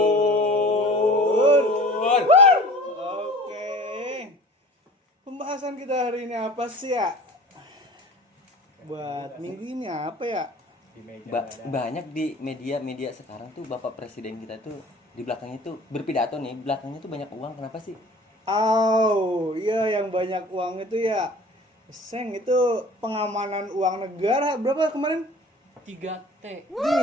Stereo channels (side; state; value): both; normal; correlation 0.44